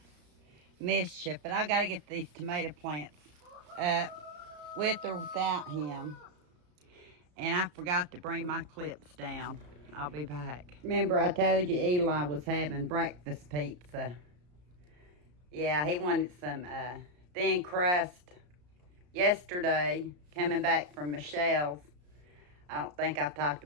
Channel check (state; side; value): late; left; 34 ms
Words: mischief. But I got to get these tomato plants up with or without him. And I forgot to bring my clips down. I'll be back. Remember I told you Eli was having breakfast pizza. Yeah, he wanted some thin crust yesterday, coming back from Michelle's. I don't think I've talked